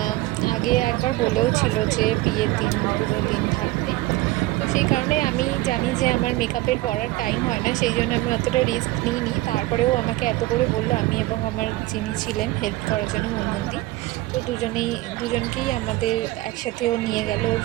আগে একবার বলেও ছিল যে বিয়ের দিন পুরো দিন থাকতে। তো সেই কারণে আমি জানি যে আমার মেকআপের পরার টাইম হয় না, সেই জন্য আমি অতটা রিস্ক নিইনি। তারপরেও আমাকে এত করে বললো, আমি এবং আমার যিনি ছিলেন হেল্প করার জন্য মুনমুন্দি, তো দুজনকেই আমাদের একসাথেও নিয়ে গেল ওর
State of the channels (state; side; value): quieter; left; 18.3 dB